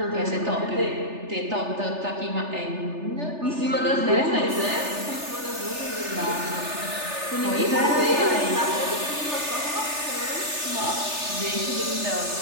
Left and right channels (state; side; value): late; left; 3.4 ms